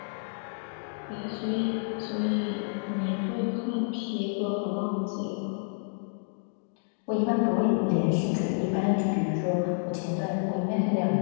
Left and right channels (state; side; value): silent; right; digital silence